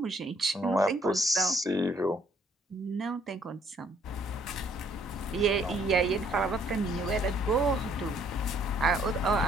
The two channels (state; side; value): normal; both; correlation 0.64